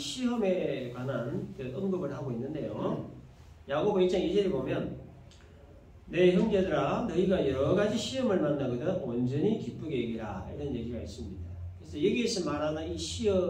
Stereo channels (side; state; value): both; identical; correlation 1.00